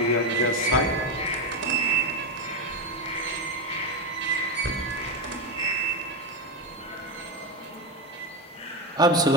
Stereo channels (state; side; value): normal; both; correlation 0.12